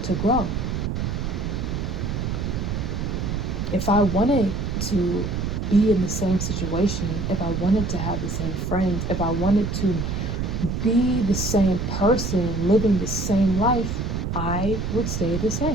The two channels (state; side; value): noise; right; rumble, 2 dB below the sound